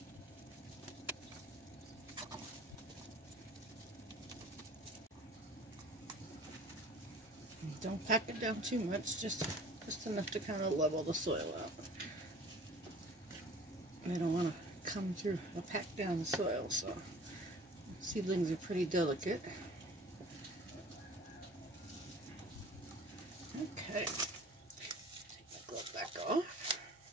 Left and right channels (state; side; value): normal; both; correlation 0.46